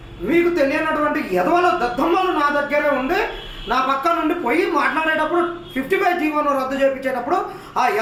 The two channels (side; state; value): both; identical; correlation 1.00